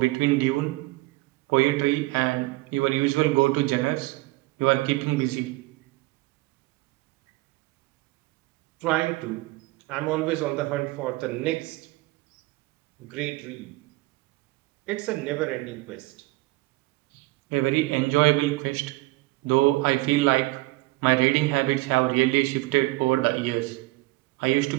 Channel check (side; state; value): left; quieter; 20.9 dB